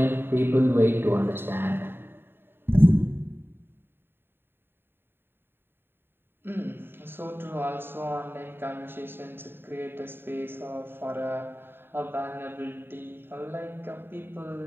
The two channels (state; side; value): late; left; 0.11 ms